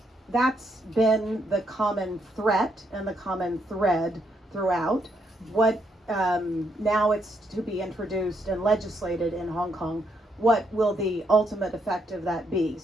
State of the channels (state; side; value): normal; both; correlation 0.76